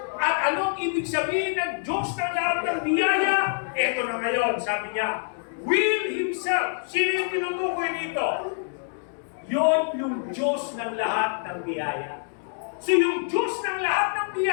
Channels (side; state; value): right; silent; 61 dB below the other